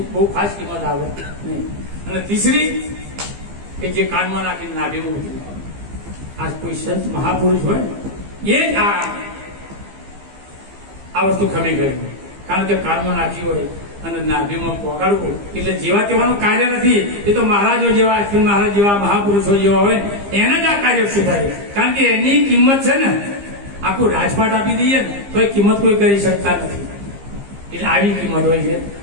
બહુ ખાસ કિંમત આવે નહીં. અને ત્રીસરી કે જે કાનમાં નાખીને નાભીમાં ઉતરી, આ કોઈ સંત મહાપુરુષ હોય એ જ આ વસ્તુ ખમી ગઈ. કારણ કે કાનમાં નાખી હોય અને નાભીમાં પોગાડવું એટલે જેવા તેવાનું કાર્ય નથી. એ તો મહારાજો જેવા, અશ્વિન મહારાજ જેવા મહાપુરુષો જેવા હોય એને જ આ કાર્ય સુધારે. કારણ કે એની કિંમત છે ને, આખું રાજપાટ આપી દઈએ ને તો એ કિંમત કોઈ કરી શકતા નથી. એટલે આવી કિંમત હોય છે.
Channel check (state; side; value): late; left; 15 ms